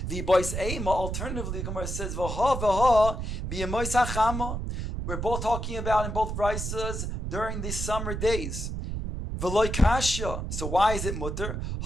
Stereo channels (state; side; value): noise; right; rumble, 4 dB below the sound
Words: The boys Eima, alternatively, the Gemara says, V'ha b'yemois hachama. We're both talking about in both brisas during the summer days. V'loi kasha. So why is it mutter?